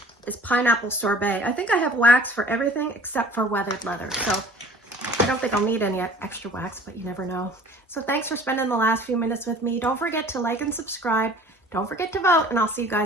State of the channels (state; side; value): normal; both; correlation 0.48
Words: Is pineapple sorbet. I think I have wax for everything except for weathered leather. So I don't think I'll need any extra wax, but you never know. So thanks for spending the last few minutes with me. Don't forget to like and subscribe. Don't forget to vote, and I'll see you